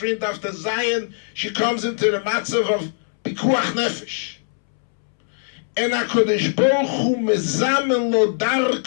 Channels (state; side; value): silent; right; 65 dB below the other